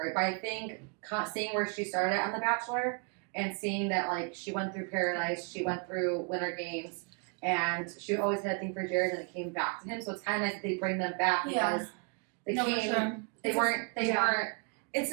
but I think seeing where she started on The Bachelor and seeing that, she went through Paradise, she went through Winter Games, and she always had a thing for Jared, and it came back to him. So it's kind of nice that they bring them back because they weren't. It's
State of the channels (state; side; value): quieter; left; 37.5 dB